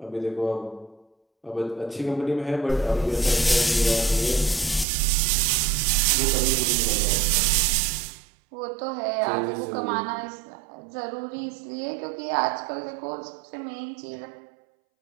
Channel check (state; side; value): drops out; left; at 4.9 s